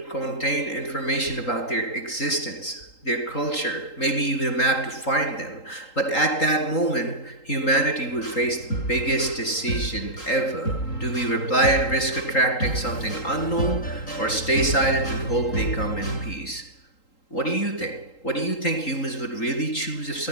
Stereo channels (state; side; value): late; right; 3.8 ms